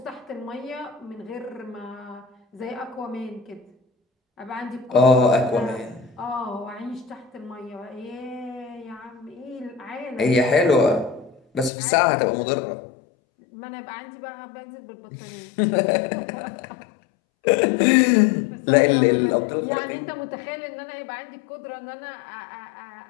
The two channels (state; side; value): drops out; right; at 11.7 s